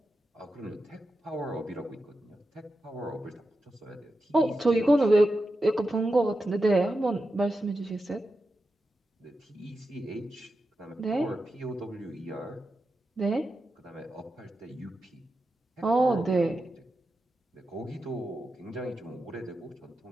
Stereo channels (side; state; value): both; normal; correlation 0.90